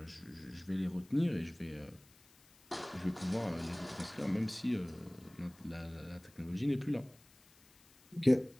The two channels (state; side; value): noise; left; hiss, 27 dB below the sound